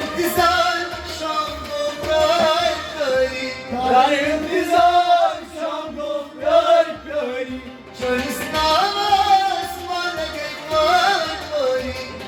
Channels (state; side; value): identical; both; correlation 1.00